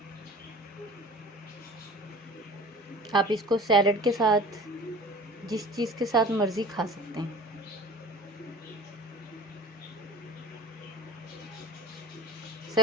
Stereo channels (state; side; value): normal; both; correlation 0.41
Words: आप इसको सैलड के साथ, जिस चीज़ के साथ मर्ज़ी खा सकते हैं।